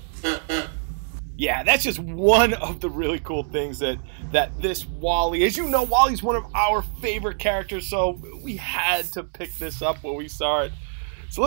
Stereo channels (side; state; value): left; silent; digital silence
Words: Yeah, that's just one of the really cool things that this WALL-E, as you know, WALL-E's one of our favorite characters, so we had to pick this up when we saw it. So